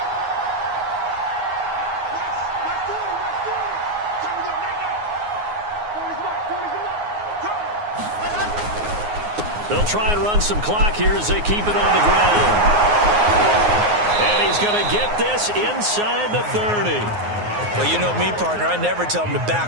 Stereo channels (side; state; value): left; late; 9.6 ms